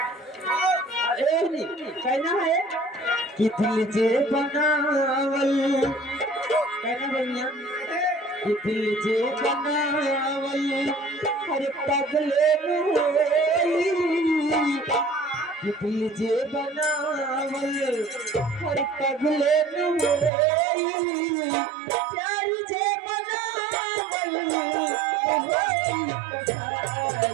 कहना है कि दिल जे बनावल कहना भैया कि दिल जे बनावल हर पगले में कि दिल जे बनावल बनावल हर पगले नुई प्यारी जे बनावल होई कसाई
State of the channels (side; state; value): left; drops out; at 20.3 s